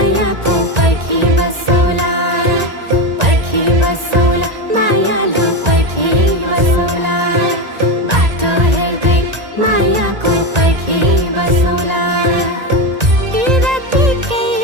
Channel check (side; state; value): left; late; 1.9 ms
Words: पर्खी बसौला पर्खी बसौला मायालु पर्खी बसौला बाटो हेर्दै मायाको पर्खी बसौला बिरातीकै